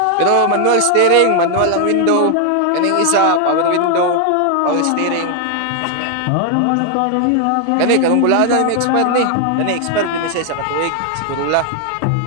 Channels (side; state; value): both; different; correlation 0.00